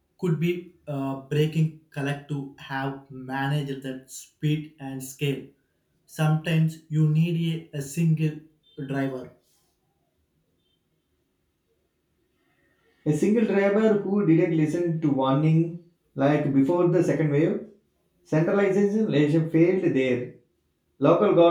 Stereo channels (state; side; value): identical; both; correlation 1.00